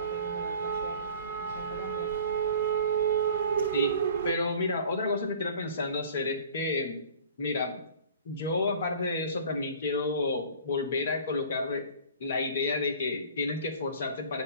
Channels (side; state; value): both; inverted; correlation -0.46